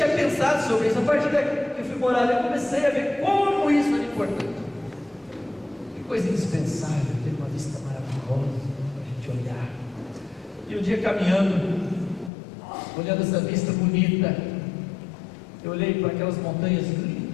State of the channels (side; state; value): right; drops out; at 12.3 s